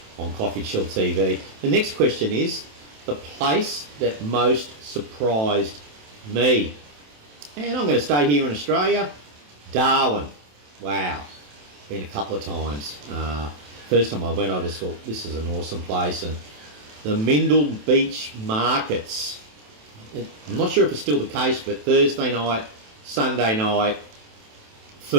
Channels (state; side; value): late; left; 27 ms